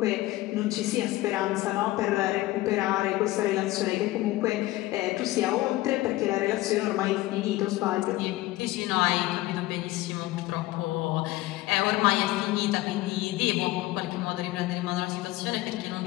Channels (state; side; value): quieter; right; 17.8 dB